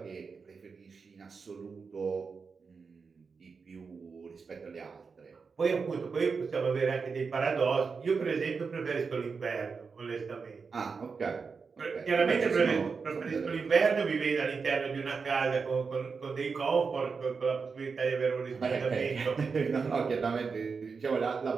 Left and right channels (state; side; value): quieter; left; 5.1 dB